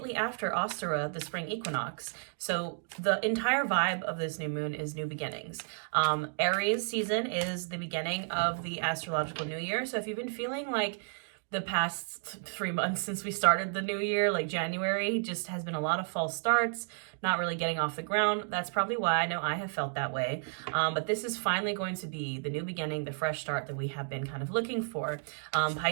after Ostara, the spring equinox. So the entire vibe of this new moon is new beginnings. Aries season is the beginning of the astrological new year. So if you've been feeling like the past 3 months since we started the new year, like January, just has been a lot of false starts, not really getting off the ground. That's probably why. I know I have felt that way. But this is finally going to be the new beginning, the fresh start that we have been kind of looking for.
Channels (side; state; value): left; silent; 56 dB below the other